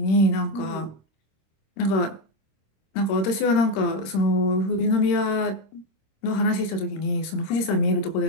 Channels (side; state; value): right; late; 26 ms